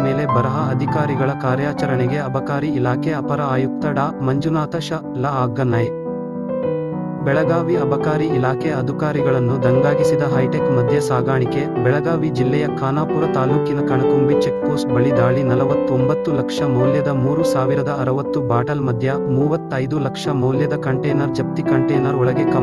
ಮೇಲೆ ಬರಹ. ಅಧಿಕಾರಿಗಳ ಕಾರ್ಯಾಚರಣೆಗೆ ಅಬಕಾರಿ ಇಲಾಖೆ ಅಪರ ಆಯುಕ್ತ ಡಾ. ಮಂಜುನಾಥ ಶ. ಲ. ಆಜ್ಞೆ. ಬೆಳಗಾವಿ ಅಬಕಾರಿ ಇಲಾಖೆ ಅಧಿಕಾರಿಗಳನ್ನು ದಂಗಾಗಿಸಿದ ಹೈಟೆಕ್ ಮದ್ಯ ಸಾಗಾಣಿಕೆ. ಬೆಳಗಾವಿ ಜಿಲ್ಲೆಯ ಖಾನಾಪುರ ತಾಲೂಕಿನ ಕಣಕುಂಬಿ ಚೆಕ್ಪೋಸ್ಟ್ ಬಳಿ ದಾಳಿ. 49 ಲಕ್ಷ ಮೌಲ್ಯದ 3060 ಬಾಟಲ್ ಮದ್ಯ, 35 ಲಕ್ಷ ಮೌಲ್ಯದ ಕಂಟೇನರ್ ಜಪ್ತಿ. ಕಂಟೇನರ್ ಒಳಗೆ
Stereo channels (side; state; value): both; identical; correlation 1.00